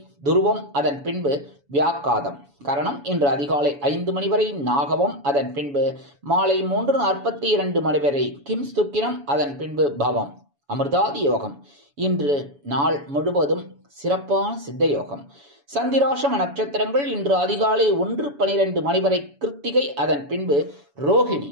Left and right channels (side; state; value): left; late; 7.1 ms